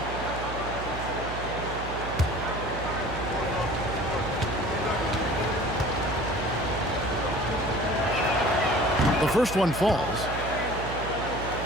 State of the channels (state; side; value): noise; right; hum, 8 dB below the sound